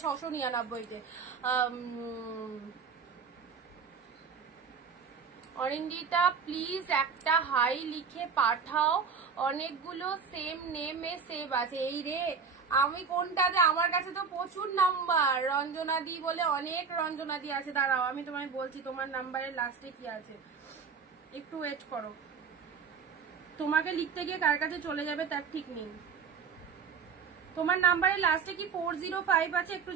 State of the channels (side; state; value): left; quieter; 5.8 dB